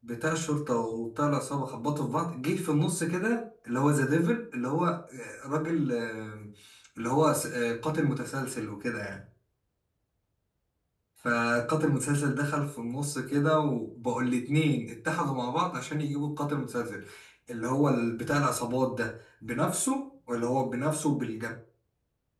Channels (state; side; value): identical; both; correlation 1.00